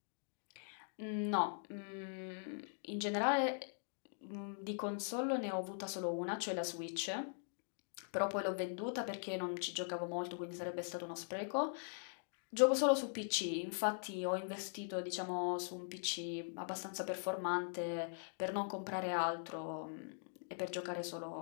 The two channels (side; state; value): right; silent; digital silence